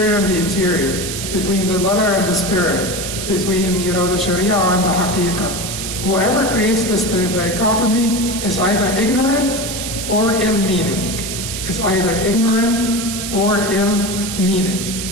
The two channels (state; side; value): noise; right; hiss, 5 dB below the sound